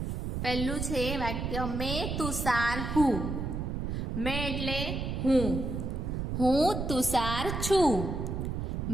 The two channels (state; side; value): noise; right; rumble, 3 dB below the sound